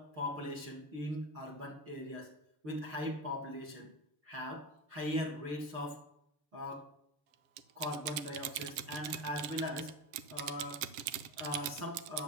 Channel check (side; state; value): left; late; 7.4 ms